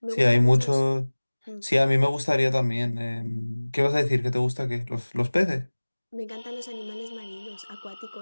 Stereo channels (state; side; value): inverted; both; correlation -1.00